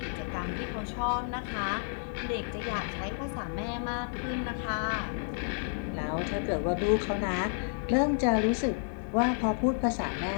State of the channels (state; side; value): silent; right; digital silence